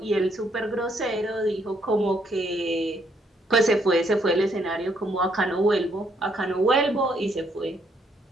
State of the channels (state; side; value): normal; both; correlation 0.71